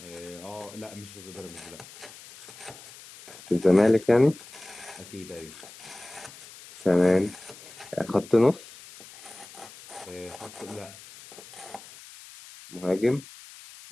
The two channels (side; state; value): left; noise; hiss, 18 dB below the sound